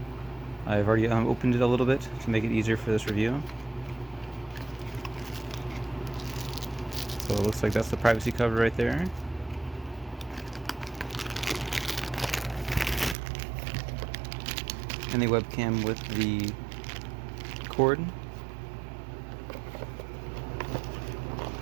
I've already opened it a little bit to make it easier for this review. So it looks like that's the privacy cover right there. And the webcam with the cord.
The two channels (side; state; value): left; drops out; at 13.2 s